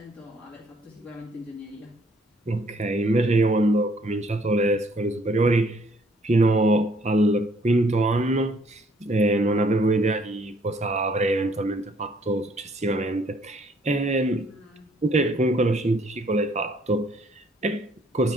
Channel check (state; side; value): normal; both; correlation 0.64